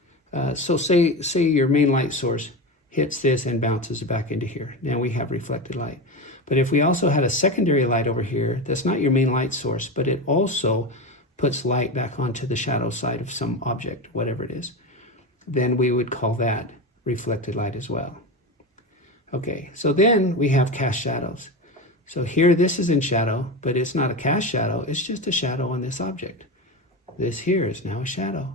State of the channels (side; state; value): both; normal; correlation 0.21